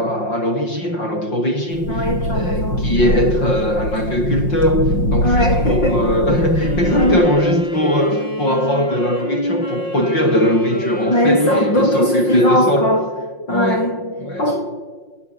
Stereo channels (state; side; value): late; right; 5.6 ms